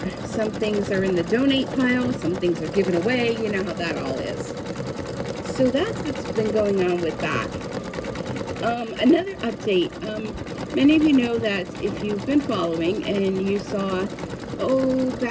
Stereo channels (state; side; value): identical; both; correlation 1.00